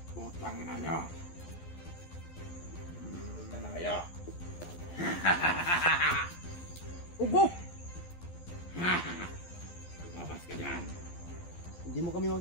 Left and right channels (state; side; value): late; right; 12 ms